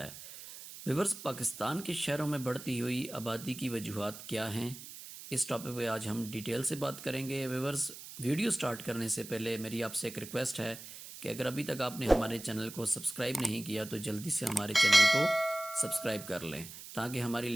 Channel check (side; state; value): right; noise; hiss, 13 dB below the sound